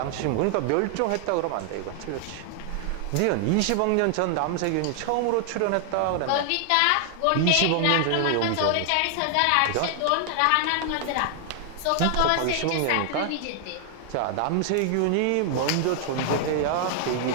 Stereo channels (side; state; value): both; different; correlation 0.00